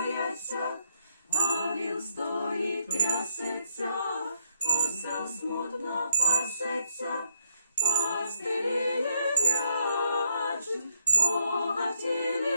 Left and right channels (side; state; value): both; inverted; correlation -0.74